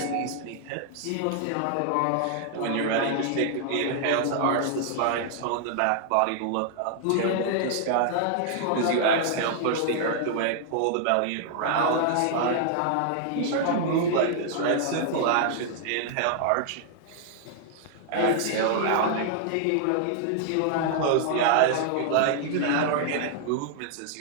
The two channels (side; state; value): both; different; correlation -0.01